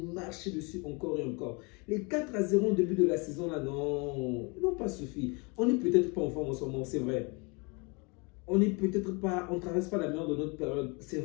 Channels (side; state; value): right; quieter; 30.5 dB